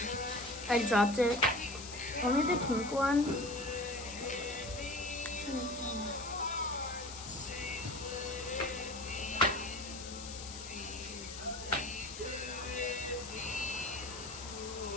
I dropped it. Only the pink one.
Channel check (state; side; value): noise; left; hiss, 10 dB below the sound